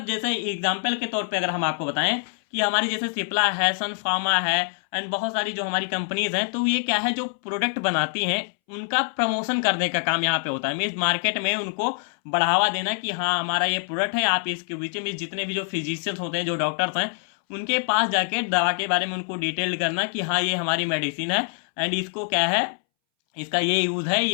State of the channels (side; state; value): right; silent; 62 dB below the other